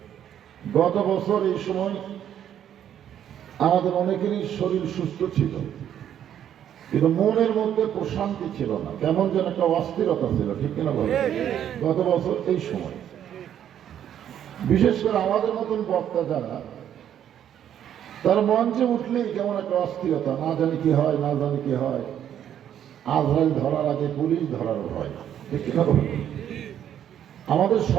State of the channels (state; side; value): quieter; left; 10.0 dB